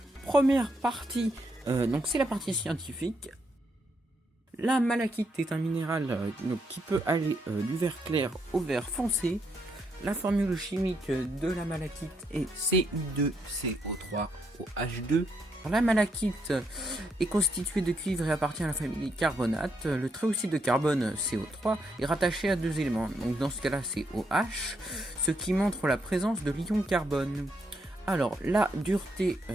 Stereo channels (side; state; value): both; normal; correlation 0.77